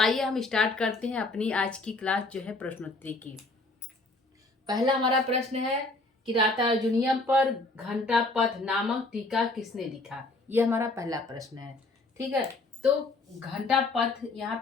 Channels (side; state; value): right; quieter; 3.1 dB